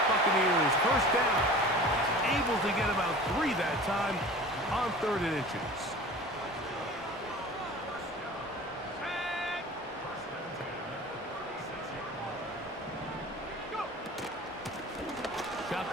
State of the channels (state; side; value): normal; both; correlation 0.40